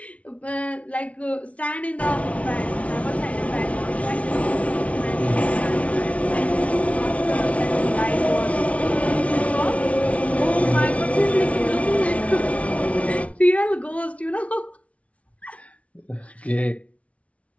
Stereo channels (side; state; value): right; late; 0.064 ms